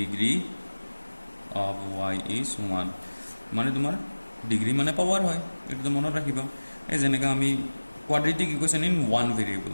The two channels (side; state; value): both; inverted; correlation -1.00